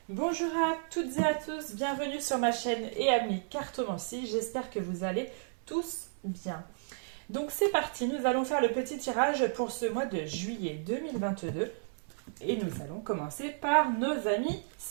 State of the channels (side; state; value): left; silent; digital silence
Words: Bonjour à toutes et à tous, bienvenue sur ma chaîne et amis cartomancie, j'espère que vous allez tous bien. Donc c'est parti, nous allons faire le petit tirage pour ce mois de juillet 2022 et nous allons commencer par nos amis